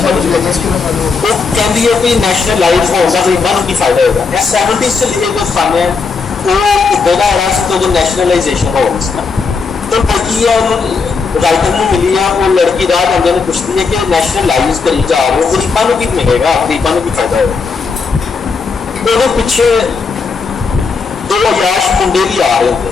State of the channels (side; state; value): right; quieter; 4.8 dB